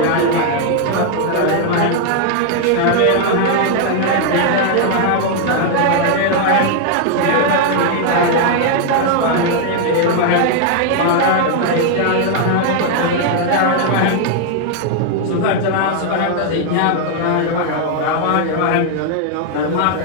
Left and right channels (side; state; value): both; different; correlation 0.00